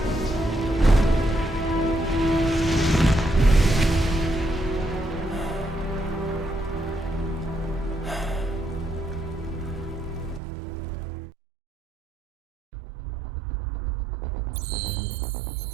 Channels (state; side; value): drops out; left; at 10.4 s